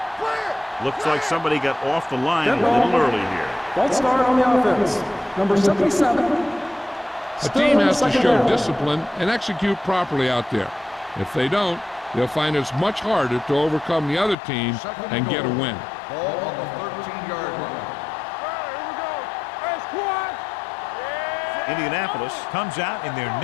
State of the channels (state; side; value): drops out; right; at 14.4 s